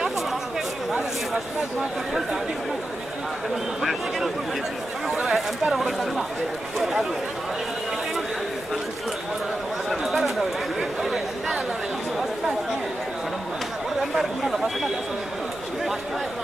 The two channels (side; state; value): left; noise; rumble, 24 dB below the sound